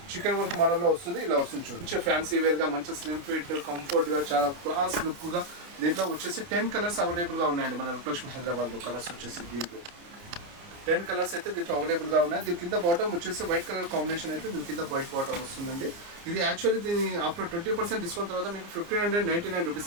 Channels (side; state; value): left; late; 29 ms